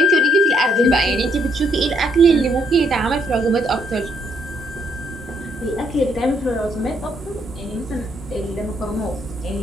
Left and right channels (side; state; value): both; normal; correlation 0.72